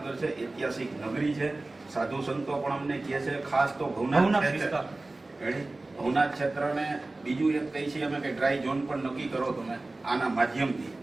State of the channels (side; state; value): left; quieter; 3.1 dB